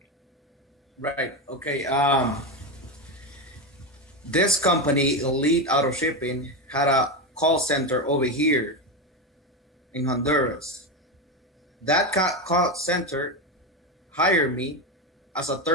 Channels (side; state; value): both; normal; correlation 0.14